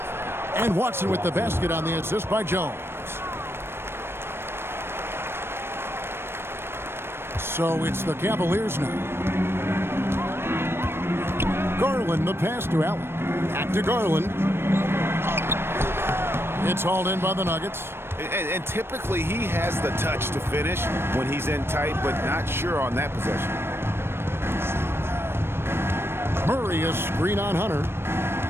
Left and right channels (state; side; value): late; left; 0.12 ms